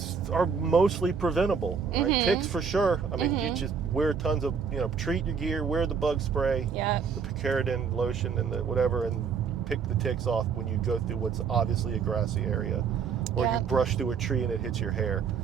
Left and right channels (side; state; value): left; quieter; 6.2 dB